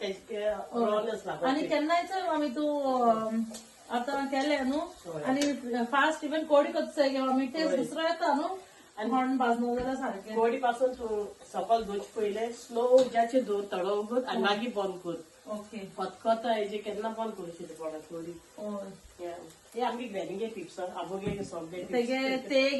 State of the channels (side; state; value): both; identical; correlation 1.00